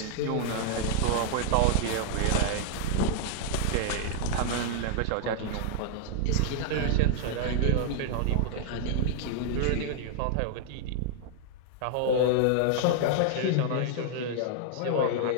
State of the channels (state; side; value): different; both; correlation -0.01